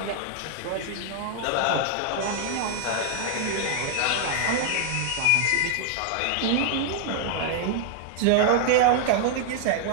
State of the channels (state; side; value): different; both; correlation 0.00